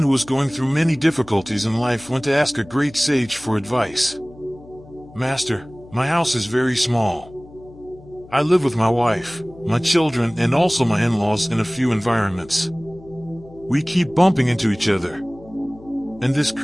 who was going through many difficulties in life went to ask a great sage for advice. "Master, my house is very small. I live with my wife, my children, and also my in-laws in a few environments. We keep bumping into each other, and this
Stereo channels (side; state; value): left; noise; hum, 22 dB below the sound